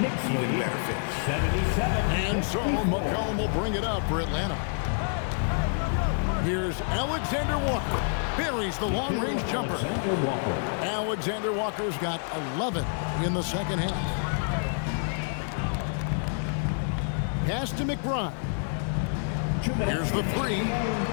even better finish. And so McCollum will bring it up for Atlanta. Here's Alexander Walker. Buries the long-range jumper. Alexander Walker's got 11 in the second half. Pass to McBride. Here's the three.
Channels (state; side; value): silent; right; digital silence